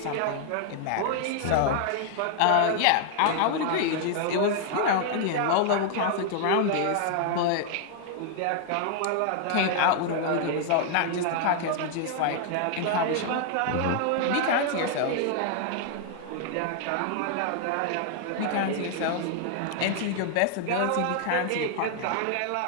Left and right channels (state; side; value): different; both; correlation 0.00